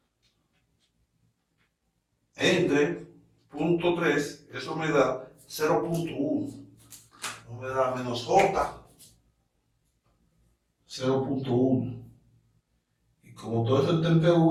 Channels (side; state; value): both; identical; correlation 1.00